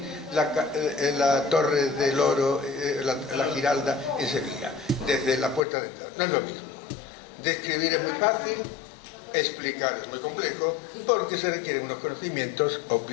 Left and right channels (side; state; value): right; drops out; at 5.6 s